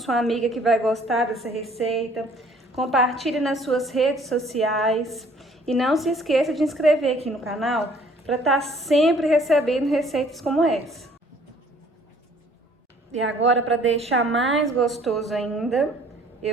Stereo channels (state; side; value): normal; both; correlation 0.57